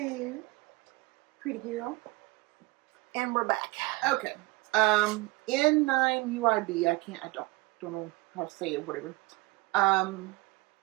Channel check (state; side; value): quieter; left; 22.9 dB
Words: pretty girl. And we're back. Okay. N9UIB, I don't know how to say it, whatever.